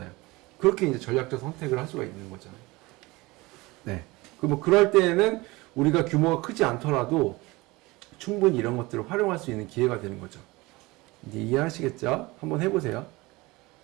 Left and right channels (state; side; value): quieter; left; 22.2 dB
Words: 그렇게 이제 전략적 선택을 할 수가 있는 거죠. 네. 뭐 그럴 때에는 우리가 규모가 크지 않더라도 충분히 이런 것들을 활용할 수 있는 기회가 되는 거죠. 이제 이해하시겠죠? 한번 해보세요.